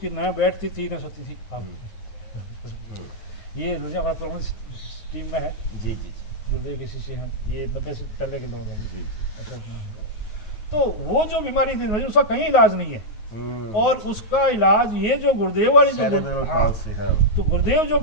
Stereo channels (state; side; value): late; right; 9.4 ms